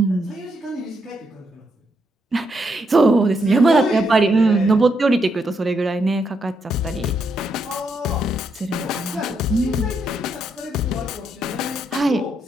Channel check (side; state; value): both; normal; correlation 0.79